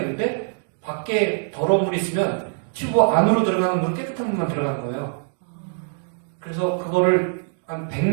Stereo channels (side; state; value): left; silent; digital silence